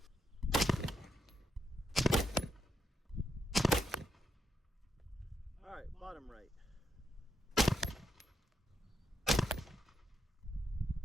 All right, bottom right.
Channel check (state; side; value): normal; both; correlation 0.80